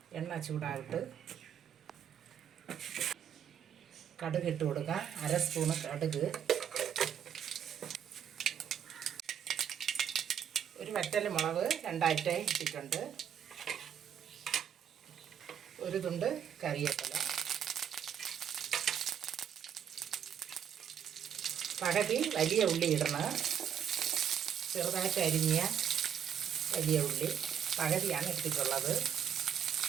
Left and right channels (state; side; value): quieter; left; 8.7 dB